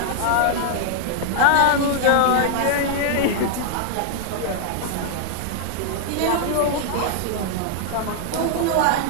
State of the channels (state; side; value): different; both; correlation -0.01